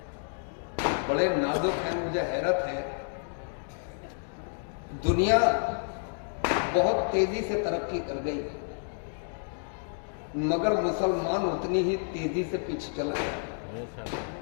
बड़े नाजुक हैं। मुझे हैरत है, दुनिया बहुत तेजी से तरक्की कर गई, मगर मुसलमान उतनी ही तेजी से पीछे चल गए।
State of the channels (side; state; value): right; silent; digital silence